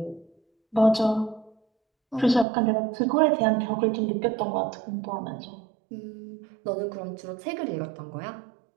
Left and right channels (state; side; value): drops out; left; at 2.5 s